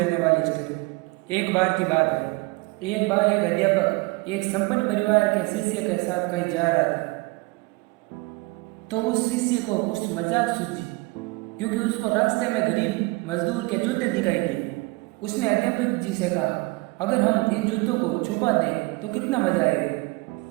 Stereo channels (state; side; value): quieter; left; 24.5 dB